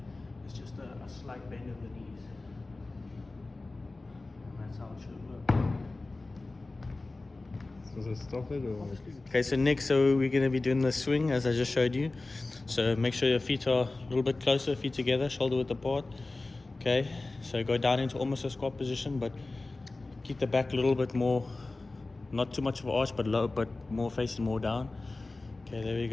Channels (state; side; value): quieter; right; 3.2 dB